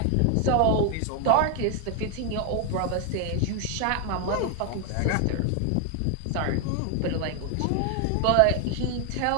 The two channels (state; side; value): different; both; correlation 0.01